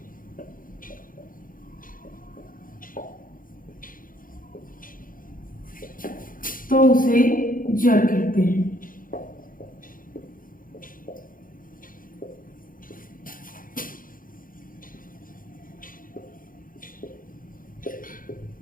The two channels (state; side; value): late; right; 0.40 ms